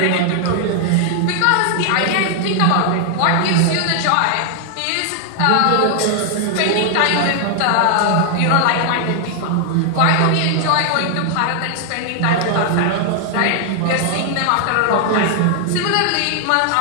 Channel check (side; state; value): both; different; correlation 0.00